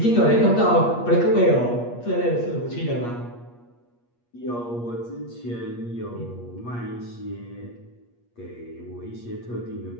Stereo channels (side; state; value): right; late; 8.4 ms